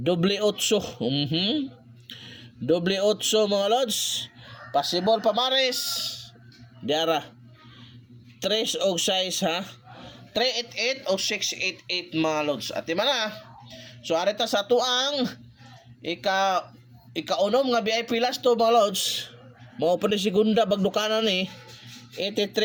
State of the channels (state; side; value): identical; both; correlation 1.00